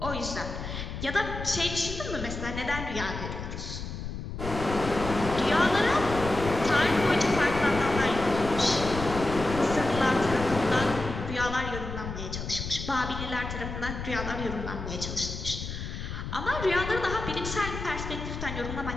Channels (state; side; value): noise; left; rumble, 7 dB below the sound